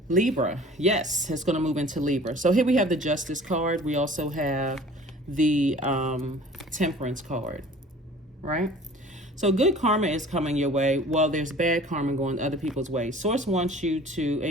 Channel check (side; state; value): both; normal; correlation 0.46